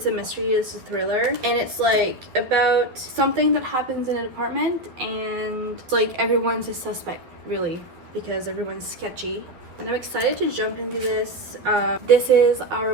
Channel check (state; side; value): late; left; 12 ms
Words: a mystery, it's a thriller, and it's like about something that happens in an apartment and it's like everyone's a suspect really because everyone's sketchy. And I'm excited to jump into this. This is